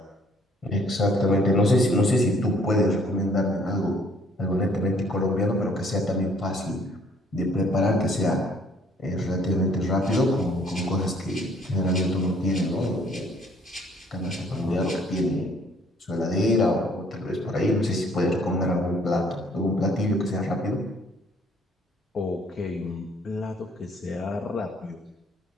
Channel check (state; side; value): normal; both; correlation 0.61